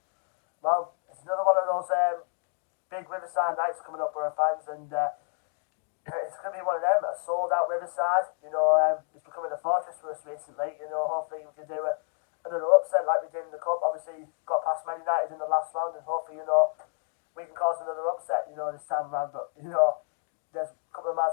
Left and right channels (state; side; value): silent; right; 58 dB below the other